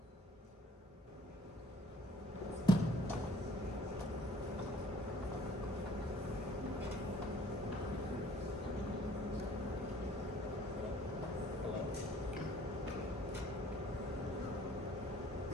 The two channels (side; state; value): both; normal; correlation 0.56